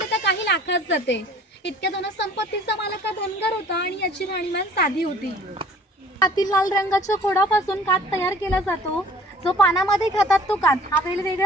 तर काही लाखात जाते. इतक्या धनसंपत्तीचा मालक हा धनगर होता आणि याची राहणीमान साधी होती. हातील लाल रंगाच्या खोडापासून कात तयार केला जातो. जो पानामध्ये खातात तो कात हा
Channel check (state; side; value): normal; both; correlation 0.52